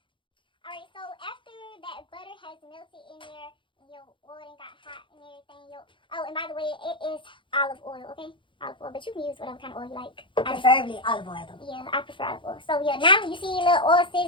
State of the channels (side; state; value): right; late; 0.24 ms